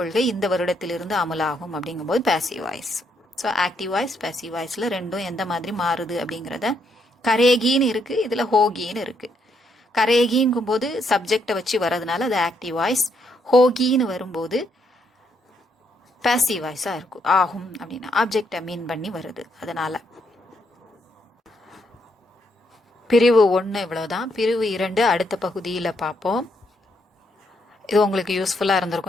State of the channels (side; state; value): both; normal; correlation 0.75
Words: இந்த வருடத்திலிருந்து அமலாகும் அப்படிங்கும்போது passive voice. So active voice passive வாய்ஸ்ல ரெண்டும் எந்த மாதிரி மாறுது அப்படிங்கிறத, கரேகின்னு இருக்கு, இதுல ஹோகின்னு இருக்கு. கரேகிங்கும் போது சப்ஜெக்டை வச்சு வர்றதுனால அது ஆக்டிவ் வாய்ஸ், ஹோகின்னு வரும்போது பேசிவ் வாய்ஸா இருக்கும். ஆகும் அப்படின்னு ஆப்ஜெக்டை மீன் பண்ணி வருது. அதனால பிரிவு 1 இவ்வளவுதான். பிரிவு 2 அடுத்த பகுதியில் பார்ப்போம். இது உங்களுக்கு யூஸ்ஃபுல்லாக